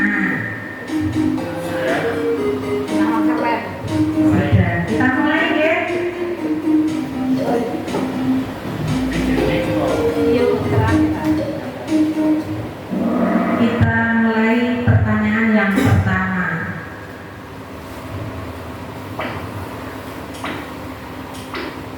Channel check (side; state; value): both; identical; correlation 1.00